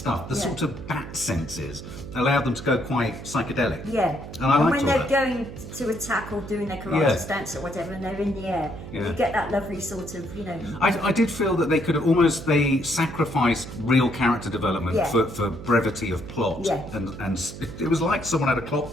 The yeah. sort of bat senses allowed them to go quite psychedelic. Yeah. And I liked when all they're that. going to attack or doing their karate Yeah. stance or whatever, and they're in the air, Yeah. you get that lovely sort of, you know. I did feel that they could have almost they sacrificed real character development Yeah. for brevity of plot, Yeah. and it was like someone had a clock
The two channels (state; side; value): noise; right; hum, 12 dB below the sound